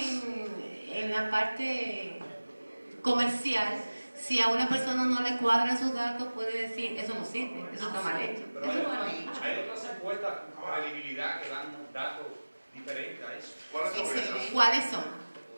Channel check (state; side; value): inverted; both; correlation -1.00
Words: la parte comercial. Si a una persona no le cuadran sus datos, puede decir, eso no sirve, eso está mal hecho. Pero hay otras encuestas con credibilidad que dan datos diferentes a eso. ¿Cuáles son esas? ¿Cuáles son?